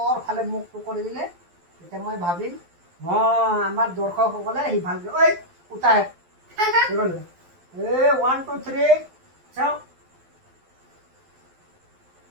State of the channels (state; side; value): late; left; 12 ms